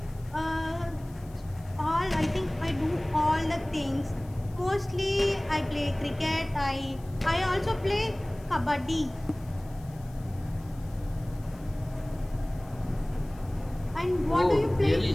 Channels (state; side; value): noise; left; hiss, 26 dB below the sound